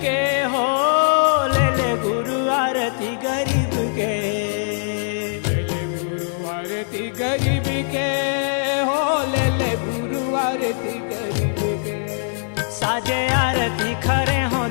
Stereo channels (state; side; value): silent; right; 65 dB below the other